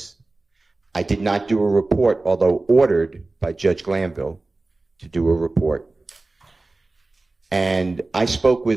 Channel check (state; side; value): quieter; left; 3.2 dB